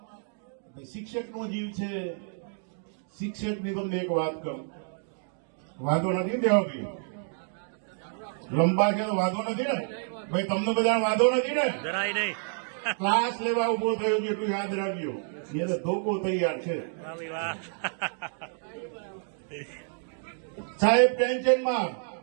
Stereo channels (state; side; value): silent; left; 59 dB below the other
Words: શિક્ષકનો જીવ છે. શિક્ષકની તમને એક વાત કહું, વાંધો નથી દેવાભાઈ, લંબા છે તો વાંધો નથી ને ભાઈ, તમને બધા વાંધો નથી ને? જરાય નહીં. ક્લાસ લેવા ઉભો થયો છે એટલું યાદ રાખજો, એને ધોકો તૈયાર છે. વાહ. સાહેબ ટેન્શનમાં,